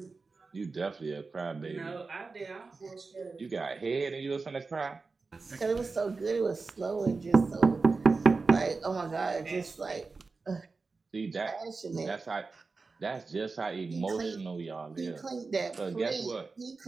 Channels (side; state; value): left; quieter; 4.1 dB